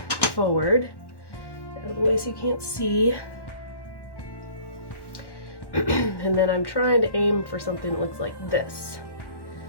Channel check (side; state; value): right; late; 1.1 ms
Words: forward out of the way so you can't see. And then I'm trying to aim for something that looks like this.